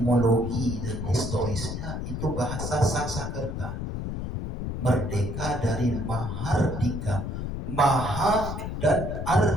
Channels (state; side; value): noise; left; rumble, 4 dB below the sound